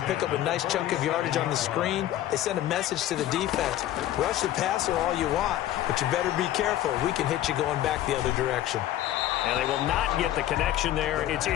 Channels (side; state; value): right; quieter; 13.2 dB